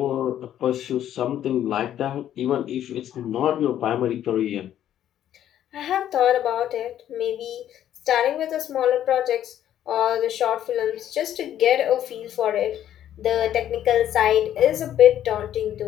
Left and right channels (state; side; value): quieter; right; 11.2 dB